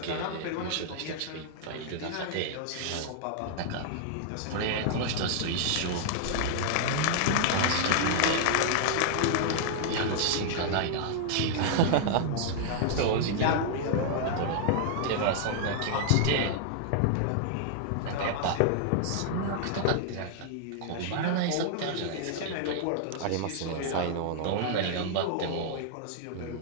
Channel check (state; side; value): different; both; correlation -0.01